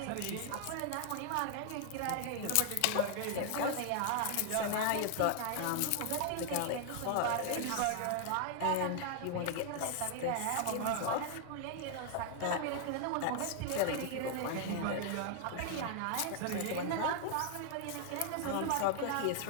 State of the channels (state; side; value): different; both; correlation 0.00